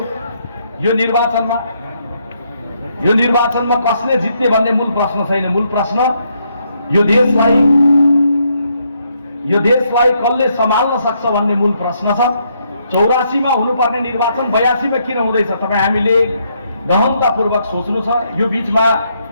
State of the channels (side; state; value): both; inverted; correlation -0.75